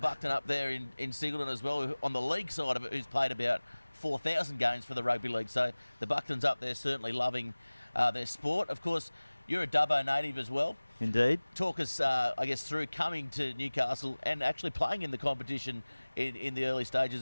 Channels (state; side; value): inverted; both; correlation -1.00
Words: up there in Singleton as well, on the league side of it, who's played about 4,000 games for the rugby league. So the Bucktons up there certainly loving their sport. Of course, you're a Dubbo native as well. Indeed. Talk us, through coming to Newcastle and actually playing in the competition in the early